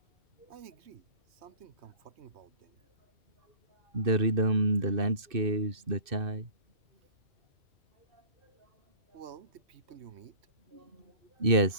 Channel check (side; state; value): left; late; 2.6 ms